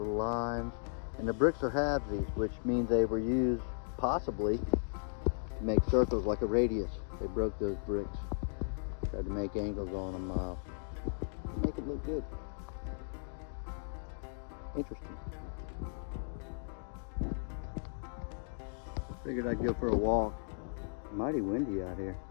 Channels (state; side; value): silent; right; digital silence